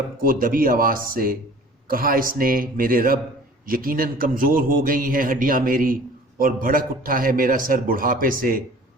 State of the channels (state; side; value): normal; both; correlation 0.47